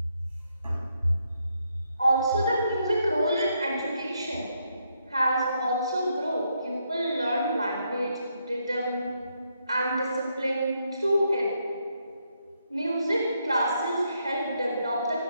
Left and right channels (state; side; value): inverted; both; correlation -0.77